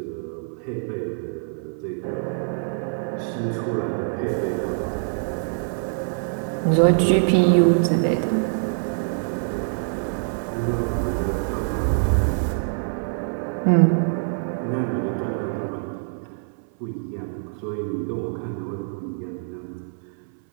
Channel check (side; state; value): left; silent; 62 dB below the other